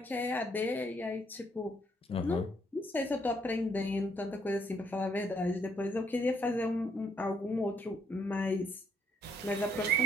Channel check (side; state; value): both; normal; correlation 0.69